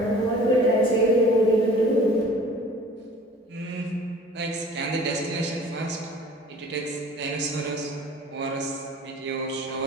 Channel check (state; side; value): normal; both; correlation 0.47